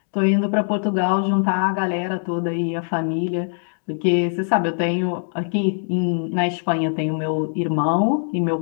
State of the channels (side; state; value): right; silent; 64 dB below the other